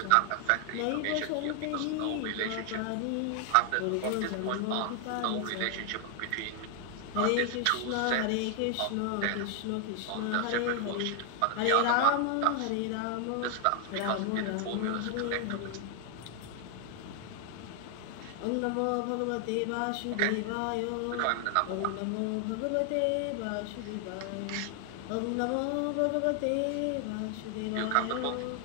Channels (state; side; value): different; both; correlation 0.00